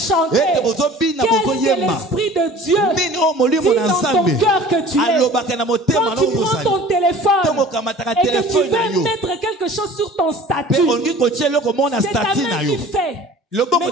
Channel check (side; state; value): both; normal; correlation 0.45